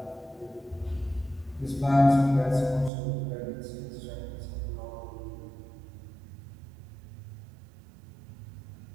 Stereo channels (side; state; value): left; drops out; at 2.9 s